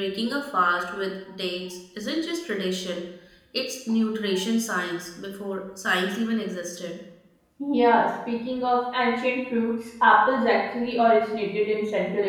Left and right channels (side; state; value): both; identical; correlation 1.00